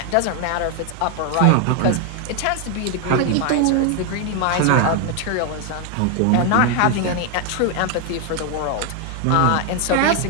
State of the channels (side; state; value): both; different; correlation 0.01